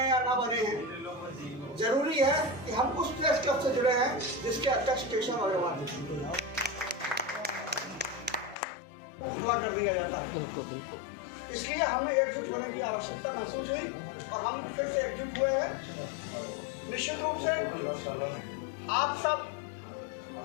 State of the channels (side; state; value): right; drops out; at 8.6 s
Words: या ना बने हैं, जरूरी है कि हम उस प्रेस क्लब से जुड़े हैं जिसके अध्यक्ष केशव अग्रवाल पूरा कर दिया जाता है। बिल्कुल। इसलिए हमें एकजुट होने की आवश्यकता महसूस हुई और हम फिर से एकजुट हुए हैं। निश्चित रूप से आप सब